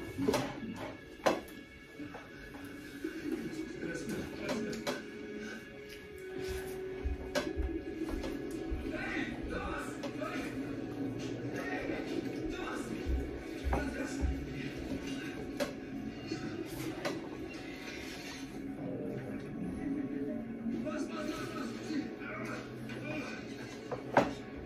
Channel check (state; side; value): identical; both; correlation 1.00